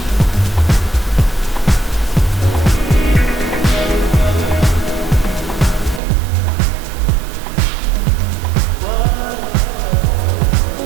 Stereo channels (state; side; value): drops out; left; at 6.0 s